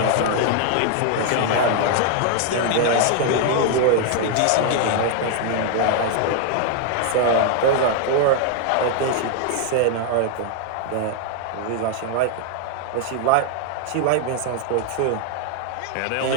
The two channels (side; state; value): both; different; correlation 0.00